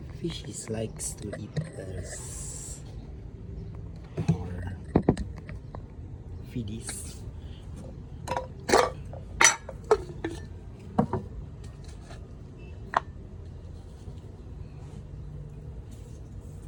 Fishies likes to eat this. Our feedies.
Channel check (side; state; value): both; identical; correlation 1.00